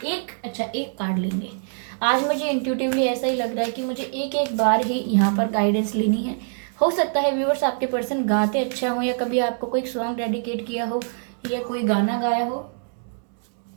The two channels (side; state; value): left; silent; 63 dB below the other